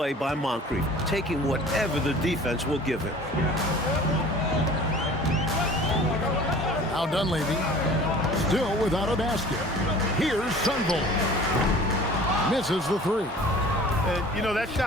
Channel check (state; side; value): normal; both; correlation 0.45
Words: by Moncrief, taking whatever the defense will give him. Now Dunleavy, still without a basket. Here's Sunvold. Misses the 3. And, you know, that